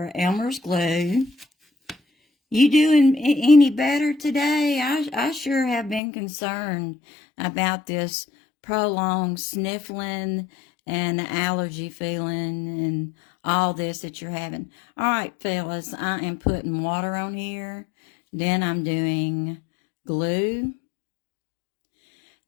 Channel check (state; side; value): drops out; right; at 6.0 s